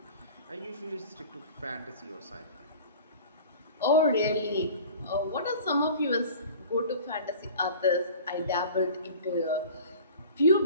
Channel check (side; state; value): both; inverted; correlation -0.42